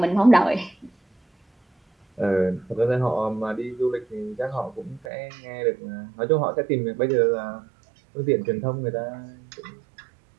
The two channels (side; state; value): left; drops out; at 5.1 s